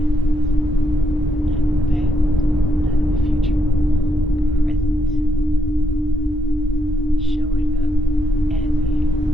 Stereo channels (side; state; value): both; normal; correlation 0.80